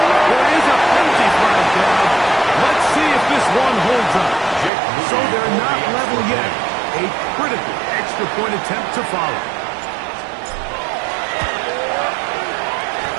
There is a penalty flag down. Let's see if this one holds up. So they're not level yet. A critical extra point attempt to follow.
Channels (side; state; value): left; drops out; at 4.7 s